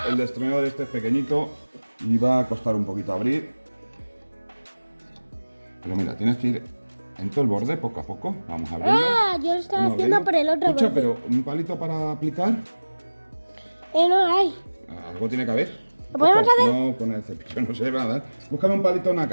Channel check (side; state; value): both; inverted; correlation -1.00